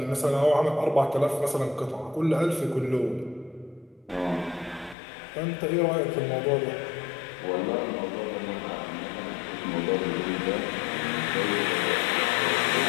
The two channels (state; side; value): drops out; right; at 5.0 s